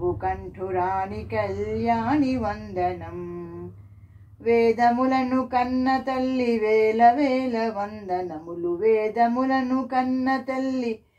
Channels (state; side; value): identical; both; correlation 1.00